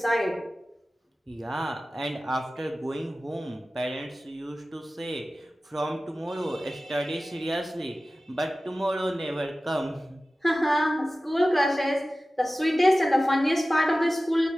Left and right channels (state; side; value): normal; both; correlation 0.96